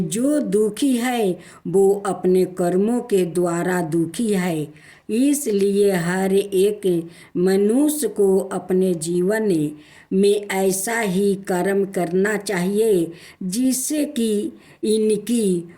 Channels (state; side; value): identical; both; correlation 1.00